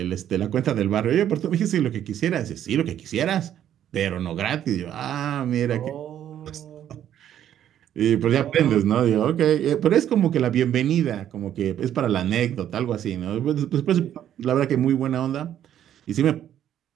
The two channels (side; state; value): left; quieter; 10.7 dB